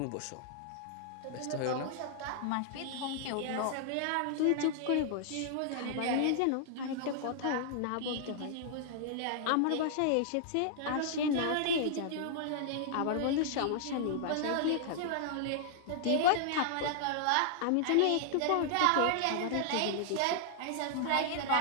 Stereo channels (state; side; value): different; both; correlation -0.01